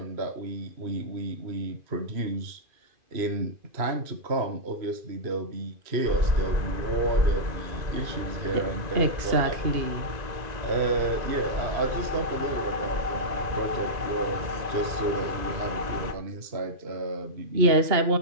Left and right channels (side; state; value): left; late; 2.5 ms